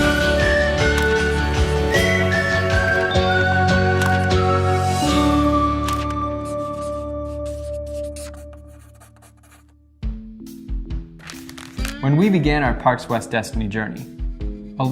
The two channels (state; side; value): identical; both; correlation 1.00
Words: When we began our Parks West Destiny journey,